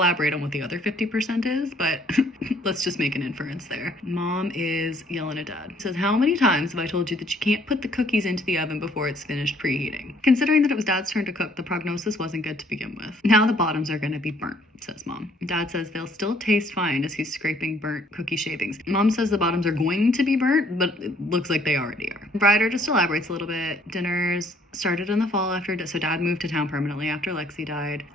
on what the other 50% is, but let's just make an inference there. Mom is yelling at dad. Says, "How many times have I told you that you can't put the cookies into the oven before it's finished preheating?" Considering that it was dad's turn to cook, the prognosis wasn't good to begin with. "Now the bottoms are going to be burnt," says mom. Dad says they'll still taste fine as he's scraping burnt cookie shavings. Mom says the bottoms are going to be burnt, but it looks like they already are. Ryder just elaborates a little bit. Dinners started in the fall so dad moved to town permanently after Lexi died.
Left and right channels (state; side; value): normal; both; correlation 0.63